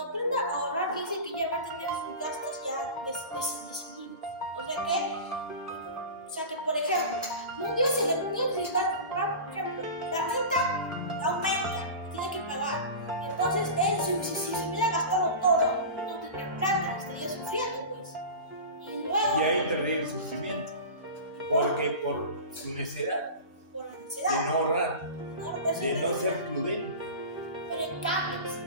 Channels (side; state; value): both; inverted; correlation -0.30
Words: aprenda a ahorrar, dice que ya va a tener sus gastos ya decididos. O sea que, por ejemplo, un día se va, por ejemplo, la renta aumenta, tiene que pagar. Entonces, él, si se hubiera gastado todo, no tendría plata, estaría sufriendo, pues. Y luego... Y ahí tendría el sufrimiento, porque por su necedad. De no ahorrar, de no ser prudente. Pero en cambio,